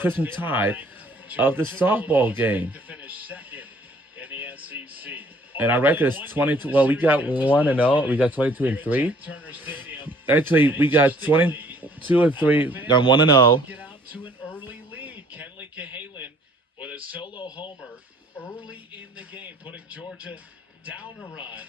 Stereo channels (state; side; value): normal; both; correlation 0.58